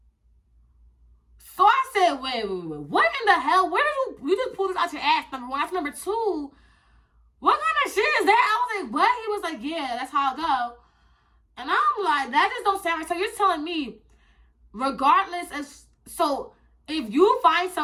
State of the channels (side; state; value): both; identical; correlation 1.00